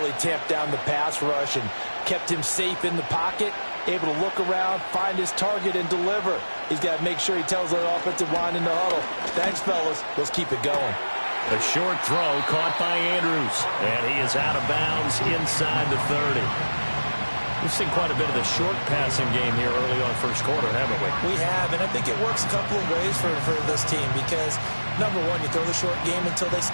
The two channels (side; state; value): both; inverted; correlation -1.00